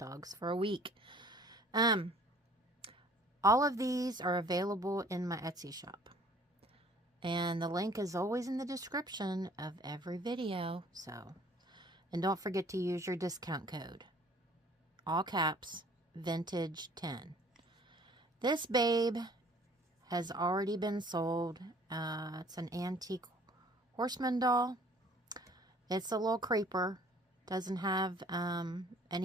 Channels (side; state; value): both; normal; correlation 0.54